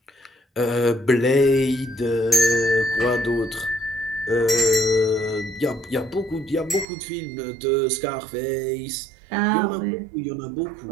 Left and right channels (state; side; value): drops out; left; at 6.9 s